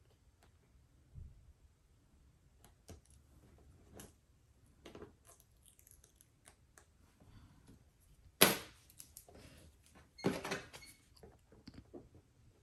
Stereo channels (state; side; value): identical; both; correlation 1.00